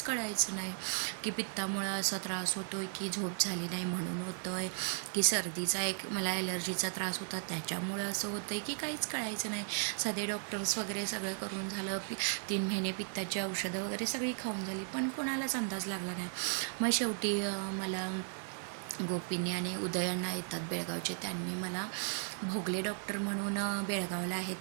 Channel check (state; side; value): silent; left; 54 dB below the other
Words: कळायचं नाही की पित्तामुळं असा त्रास होतो आहे, की झोप झाली नाही म्हणून होतो आहे, की सर्दीचा मला ॲलर्जीचा त्रास होता त्याच्यामुळं असं होतं आहे, की काहीच कळायचं नाही. साधे डॉक्टर्स वगैरे सगळं करून झालं, 3 महिने पित्ताची औषधं वगैरे सगळी खाऊन झाली, पण कोणालाच अंदाज लागला नाही. मग शेवटी मला गोपींनी आणि उदयांना येतात बेळगावचे, त्यांनी मला भोगले डॉक्टर म्हणून बेळगावला आहेत